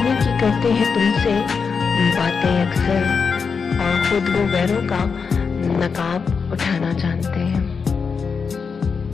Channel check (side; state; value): right; quieter; 5.6 dB